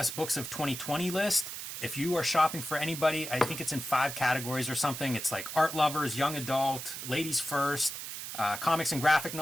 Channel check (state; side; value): noise; right; hiss, 7 dB below the sound